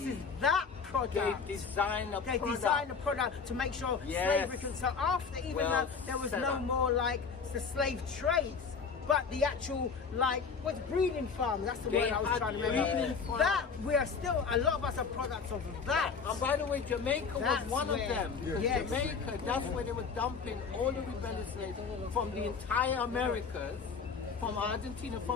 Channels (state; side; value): quieter; right; 5.5 dB